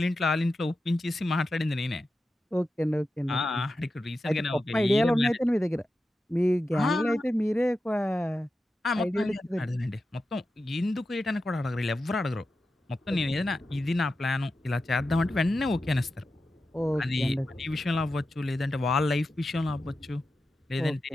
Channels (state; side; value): normal; both; correlation 0.91